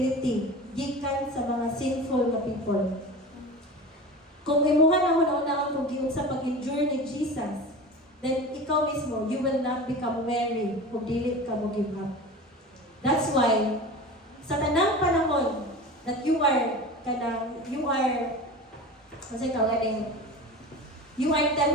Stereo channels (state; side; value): normal; both; correlation 0.33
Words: gikan sa mga sinful na people. Kung imuha na hunahunaan kung giunsa pag-endure ni Jesus, then ikaw mismo, you will not become weary kung dili ka mo give up. That's why, sa tanang panahon that you are